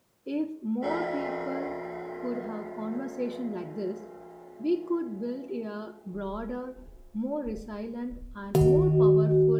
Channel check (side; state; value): both; identical; correlation 1.00